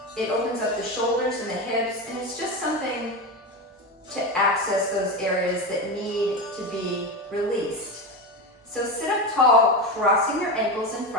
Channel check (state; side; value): normal; both; correlation 0.19